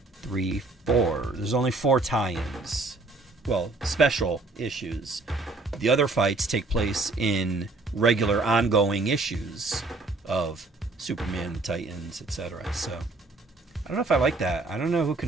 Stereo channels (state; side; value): quieter; left; 3.3 dB